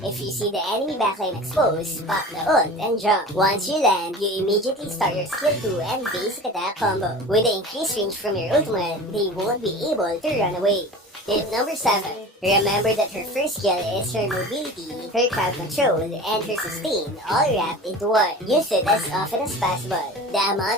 If you see the enemy backline exposed, pop the ult and jump. Once you land, you immediately start your skill 2 and basic attack combo. With the increased range from your ultimate, they won't be able to run away. Tip number 7. Remember that her first skill is her mobility, her crowd control, and her sustain all wrapped into one. Use it as often as possible. The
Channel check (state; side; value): normal; both; correlation 0.36